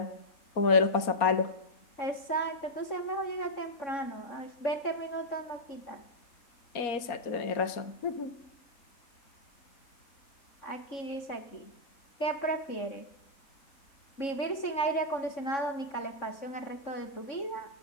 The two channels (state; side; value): late; right; 3.6 ms